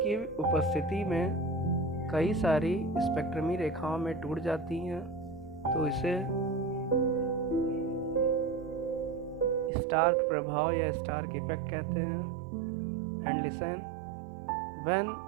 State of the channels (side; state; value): left; drops out; at 9.7 s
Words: उपस्थिति में कई सारी स्पेक्ट्रमी रेखाओं में टूट जाती हैं तो इसे स्टार्क प्रभाव या स्टार्क इफेक्ट कहते हैं। And listen, when